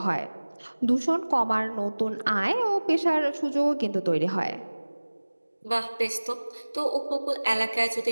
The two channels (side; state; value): both; inverted; correlation -1.00